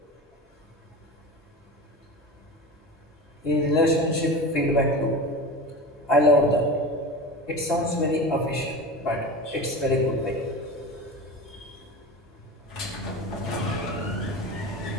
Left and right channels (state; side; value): normal; both; correlation 0.30